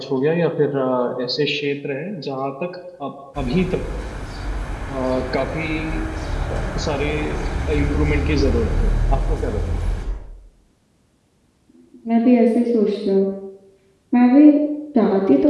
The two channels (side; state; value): both; identical; correlation 1.00